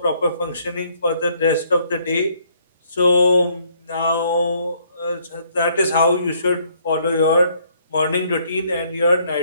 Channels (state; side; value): inverted; both; correlation -0.66